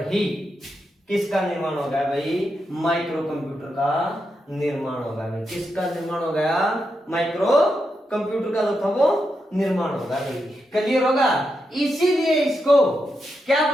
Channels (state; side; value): normal; both; correlation 0.85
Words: ही किसका निर्माण हो गया भाई? माइक्रो कंप्यूटर का निर्माण हो गया भाई। किसका निर्माण हो गया? माइक्रो कंप्यूटर का जो था वो निर्माण होगा भाई। क्लियर होगा? इसीलिए इसको क्या